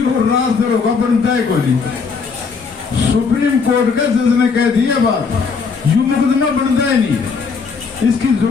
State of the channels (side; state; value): right; quieter; 5.2 dB